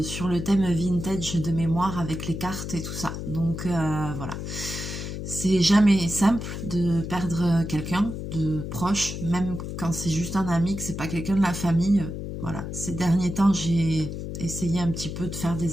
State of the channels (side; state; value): left; noise; hum, 6 dB below the sound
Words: sur le thème vintage de mémoire avec les cartes et tout ça. Donc voilà. C'est jamais simple de perdre quelqu'un de proche, même quand c'est juste un ami, que c'est pas quelqu'un de la famille. Voilà. Ces derniers temps, j'ai essayé un petit peu de faire